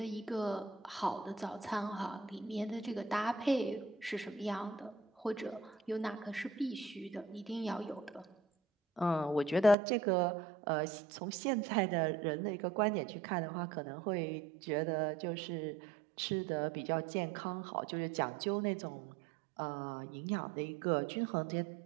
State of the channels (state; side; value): drops out; left; at 9.8 s